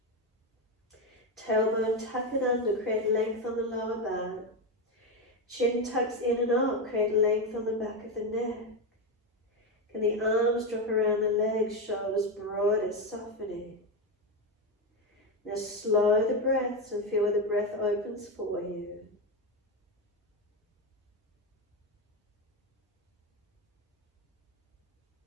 Tailbone, tuck it under, create length on the lower back. Chin tucks in and up, create length on the back of the neck. Can the arms drop around the legs, shoulders broader, softening. Now slow the breaths and feel where the breath opens for you.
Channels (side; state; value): both; normal; correlation 0.11